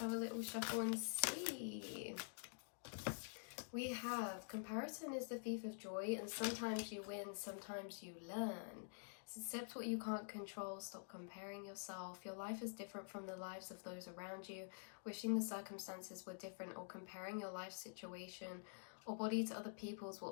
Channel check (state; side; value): silent; right; digital silence